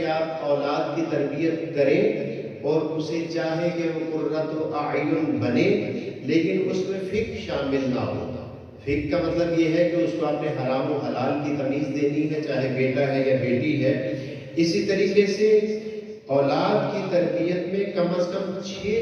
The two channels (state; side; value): identical; both; correlation 1.00